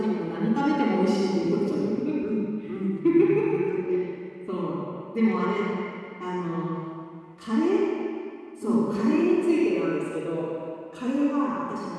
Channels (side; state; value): both; identical; correlation 1.00